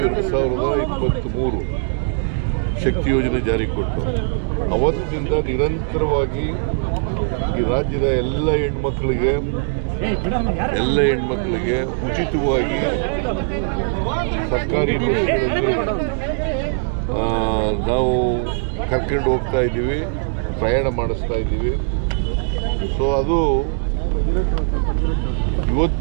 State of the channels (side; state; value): left; silent; digital silence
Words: 2023 ಶಕ್ತಿ ಯೋಜನೆ ಜಾರಿಗೆ ಕೊಟ್ಟು ಅವತ್ತಿನಿಂದ ನಿರಂತರವಾಗಿ ಈ ರಾಜ್ಯದ ಎಲ್ಲ ಹೆಣ್ಮಕ್ಳಿಗೆ ಉಚಿತವಾಗಿ ಸರ್ಕಾರಿ ಬಸ್ಗಳಲ್ಲಿ ನಾವು ಕರ್ಕೊಂಡು ಹೋಗ್ತಾ ಇದ್ದೀವಿ, ಪ್ರಯಾಣ ಮಾಡಿಸ್ತಾ ಇದ್ದೀವಿ. ಸೊ ಅದು